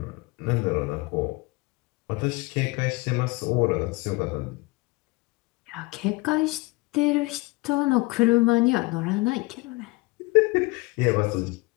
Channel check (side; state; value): right; quieter; 23.6 dB